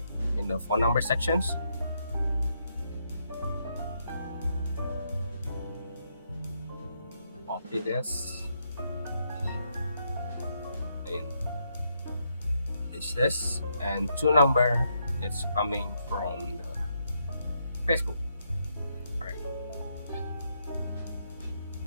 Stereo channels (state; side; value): inverted; both; correlation -0.78